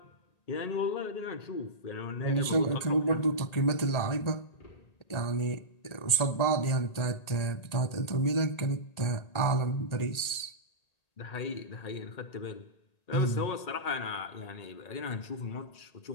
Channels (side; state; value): right; late; 1.8 ms